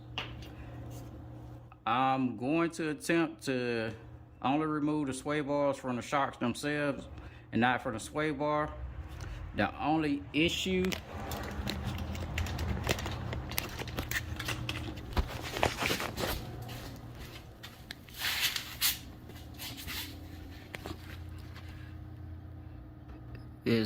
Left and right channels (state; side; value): identical; both; correlation 1.00